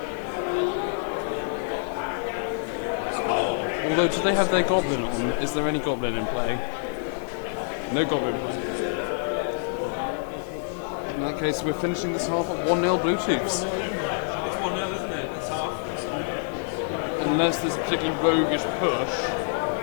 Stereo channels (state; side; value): silent; right; digital silence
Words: Although, do they have their Goblin? Is there any Goblin in play? No Goblin. In that case, we're finishing this half at 1-0 Bluetooths. It's 1-0, isn't it? It's half. Unless there's a particular roguish push.